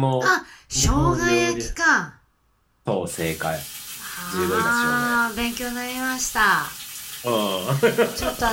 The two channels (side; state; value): both; identical; correlation 1.00